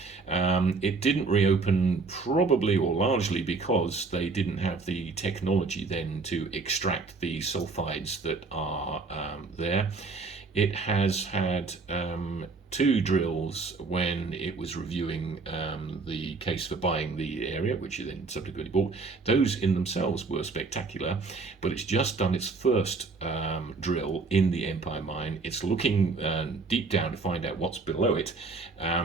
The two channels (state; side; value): quieter; left; 4.1 dB